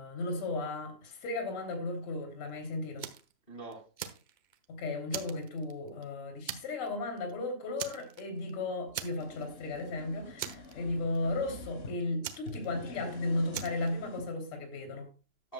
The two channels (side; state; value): right; late; 2.2 ms